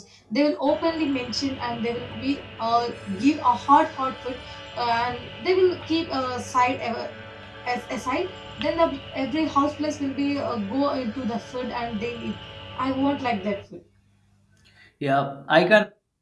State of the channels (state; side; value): identical; both; correlation 1.00